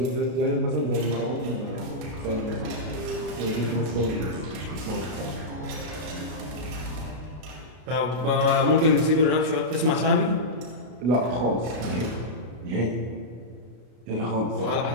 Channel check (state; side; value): late; left; 33 ms